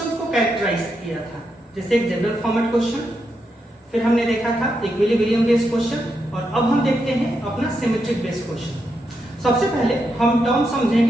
को कैरेक्टराइज किया था, जैसे एक जनरल फॉर्मेट क्वेश्चन, फिर हमने देखा था इक्विलिब्रियम बेस्ड क्वेश्चन और अब हम देखते हैं अपना सिमेट्रिक बेस्ड क्वेश्चन। सबसे पहले हम टर्म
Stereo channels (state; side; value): normal; both; correlation 0.83